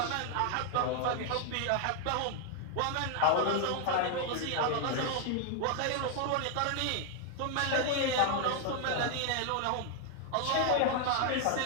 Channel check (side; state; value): both; different; correlation 0.00